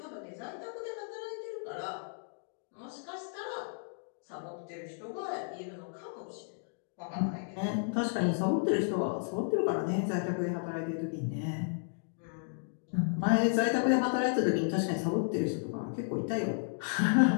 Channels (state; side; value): silent; right; digital silence